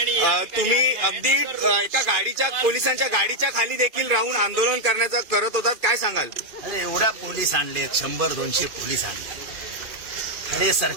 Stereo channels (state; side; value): late; left; 2.5 ms